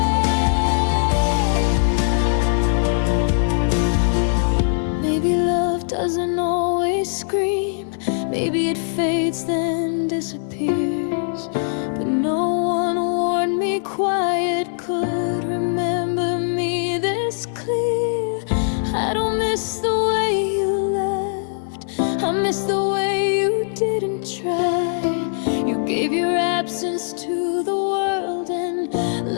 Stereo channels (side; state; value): right; silent; 65 dB below the other